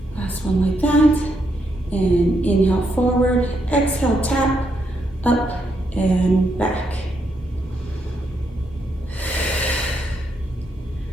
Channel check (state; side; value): normal; both; correlation 0.78